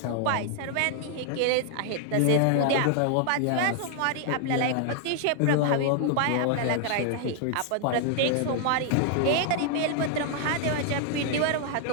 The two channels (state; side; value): different; both; correlation 0.00